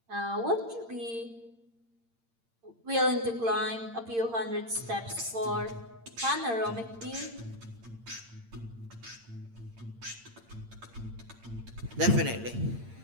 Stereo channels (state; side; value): late; left; 8.7 ms